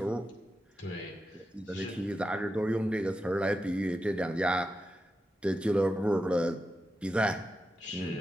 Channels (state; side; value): normal; both; correlation 0.89